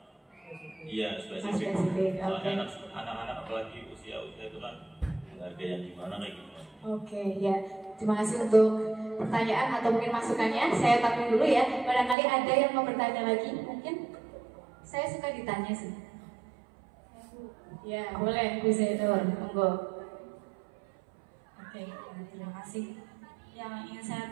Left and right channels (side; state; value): left; drops out; at 12.2 s